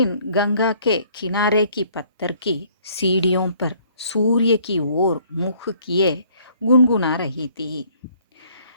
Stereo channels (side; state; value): both; inverted; correlation -0.61